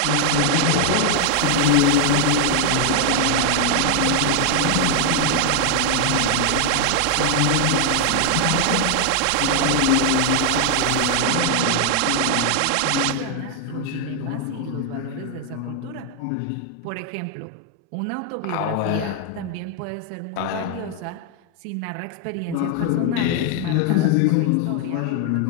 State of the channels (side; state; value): both; different; correlation 0.00